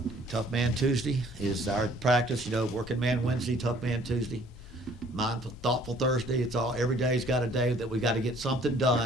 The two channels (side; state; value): both; normal; correlation 0.57